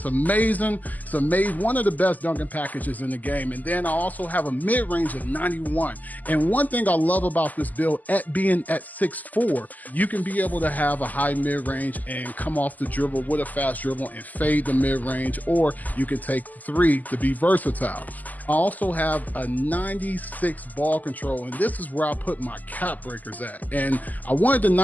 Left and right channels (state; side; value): late; right; 0.081 ms